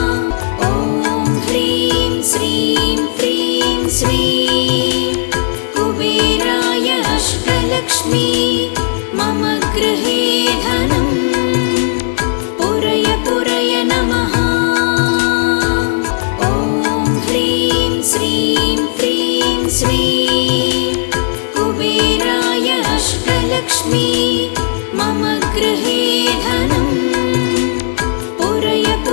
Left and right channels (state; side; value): silent; right; digital silence